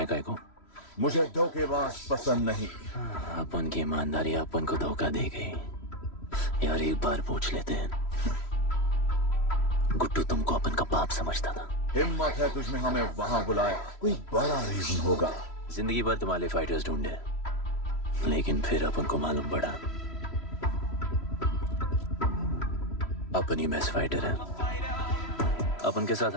काय को? मुझे धोखेबाज पसंद नहीं। अपन की ईमानदारी अपन को धोखा दे गई। यार एक बार पूछ लेते हैं, गुड्डू तुमको अपन का बाप समझता था। हिम्मत है तुझमें हमें वहां बुलाया, कोई बड़ा रीजन होगा। जिंदगी भर तुम्हारे फाइटर्स ढूंढे, लेकिन फिर अपन को मालूम पड़ा अपन ही बेस्ट फाइटर है। अपन के साथ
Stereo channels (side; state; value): right; late; 3.1 ms